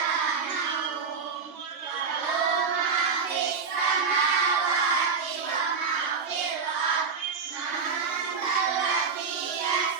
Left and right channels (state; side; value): quieter; left; 5.5 dB